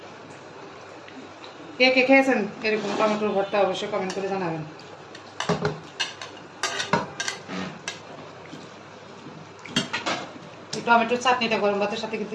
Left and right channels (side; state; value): both; identical; correlation 1.00